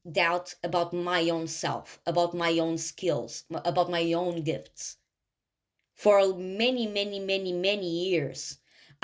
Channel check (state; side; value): identical; both; correlation 1.00